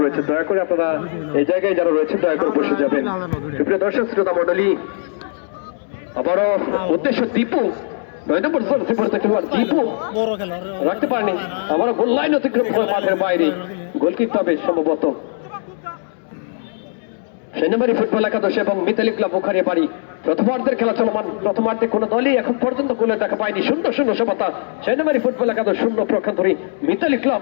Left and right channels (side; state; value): right; silent; 66 dB below the other